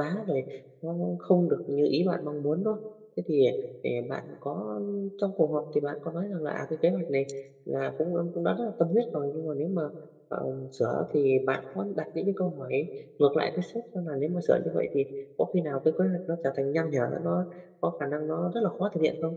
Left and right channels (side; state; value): both; identical; correlation 1.00